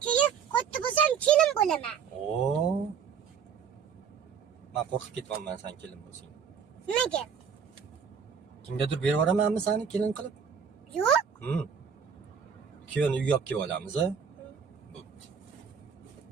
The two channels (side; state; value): left; quieter; 6.8 dB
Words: keyin katta bo'lsam kelin bo'laman. Oo. Men qo'rqib ketyapman sen kelin bo'lsang. Nimaga? Kimgadir berib yuboramanmi seni kelin qilib? Yo'q. Kuyovni uyga olib kelib olamiz, a?